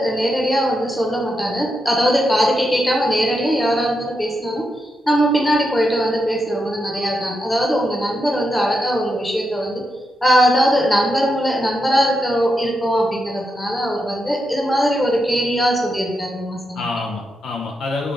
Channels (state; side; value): normal; both; correlation 0.85